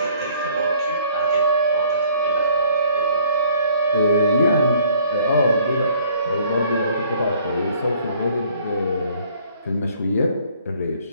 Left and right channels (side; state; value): both; inverted; correlation -0.59